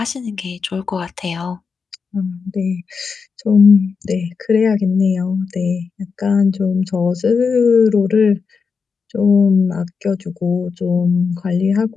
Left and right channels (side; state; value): right; quieter; 5.4 dB